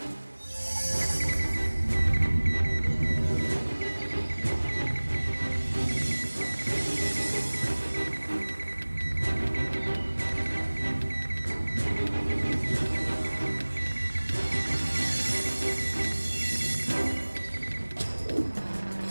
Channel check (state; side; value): inverted; both; correlation -1.00